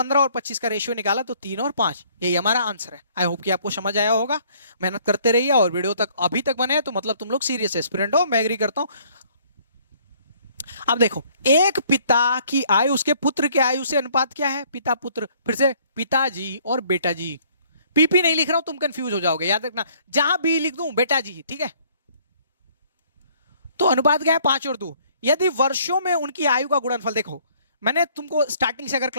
और 25 का रेशियो निकाला तो 3 और 5, यही हमारा आंसर है। आई होप कि आपको समझ आया होगा, मेहनत करते रहिए और वीडियो तक अभी तक बने तो मतलब तुम लोग सीरियस एस्पिरेंट हो, मैं एग्री करता हूं। अब देखो एक पिता की आयु उसके पुत्र की आयु से अनुपात क्या है, पिता पुत्र, फिर से पिताजी और बेटा जी, पीपी नहीं लिख रहा हूं तुम कंफ्यूज हो जाओगे, याद रखना जहां भी लिख दूं बेटा जी, ठीक है। तो अनुपात क्या है 5 और 2। यदि वर्षों में उनकी आयु का गुणनफल, देखो मैंने तुमको स्टार्टिंग से अगर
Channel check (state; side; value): inverted; both; correlation -0.60